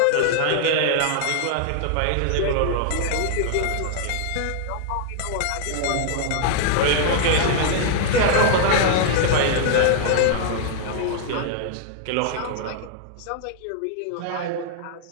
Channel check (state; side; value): different; both; correlation -0.01